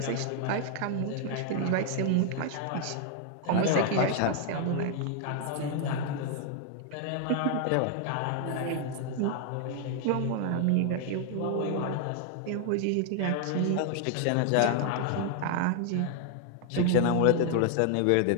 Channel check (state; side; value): different; both; correlation 0.00